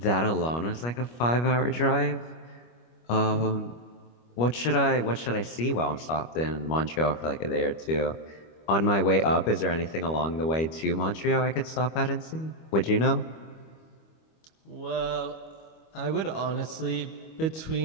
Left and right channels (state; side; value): late; right; 25 ms